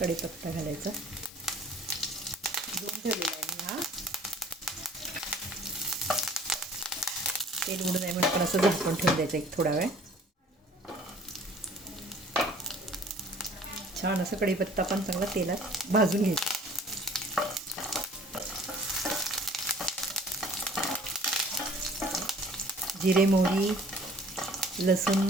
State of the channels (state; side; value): normal; both; correlation 0.52